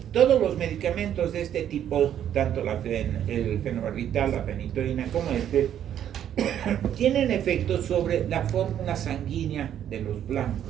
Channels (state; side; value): quieter; left; 10.2 dB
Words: todos los medicamentos de este tipo, tanto el fenobarbital, la fenitoína como tienen efectos sobre la fórmula sanguínea de los